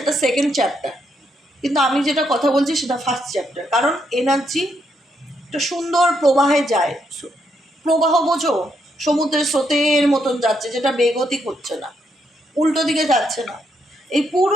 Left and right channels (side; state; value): both; normal; correlation 0.77